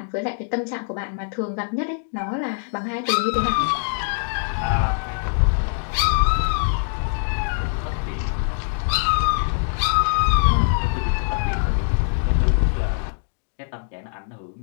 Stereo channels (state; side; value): silent; right; digital silence